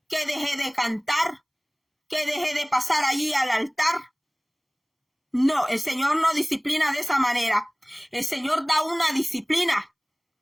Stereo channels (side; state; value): both; identical; correlation 1.00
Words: que deje de cantar, que deje de pasar allí al altar. No, el Señor no disciplina de esa manera. El Señor da una disciplina